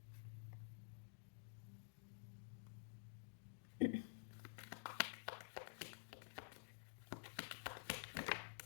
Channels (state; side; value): silent; right; digital silence